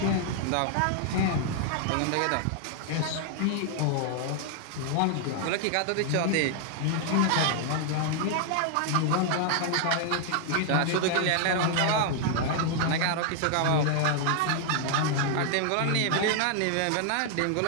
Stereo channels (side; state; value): both; different; correlation 0.00